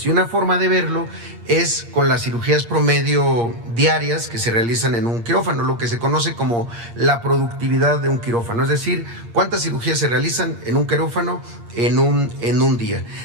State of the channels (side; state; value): left; late; 8.6 ms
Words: Y una forma de verlo es con las cirugías promedio diarias que se realizan en un quirófano, lo que se conoce como la productividad de un quirófano, es decir, cuántas cirugías se realizan en un quirófano en un día.